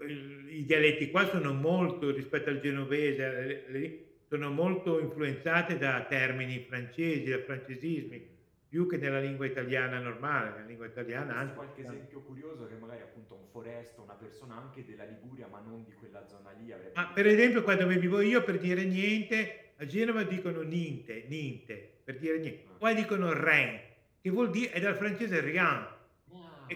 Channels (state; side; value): identical; both; correlation 1.00